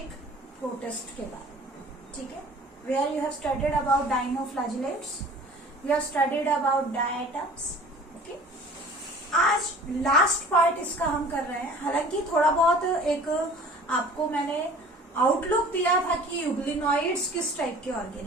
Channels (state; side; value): normal; both; correlation 0.46